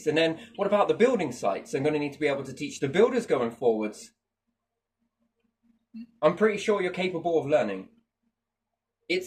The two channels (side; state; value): both; identical; correlation 1.00